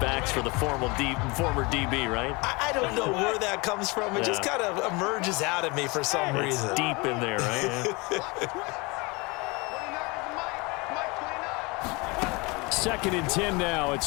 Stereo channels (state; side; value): quieter; right; 26.5 dB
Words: for the former DB, right? I don't know where that comes from. It just kind of emerges out of me for some reason. It's deep in there, right? Second and 10 now.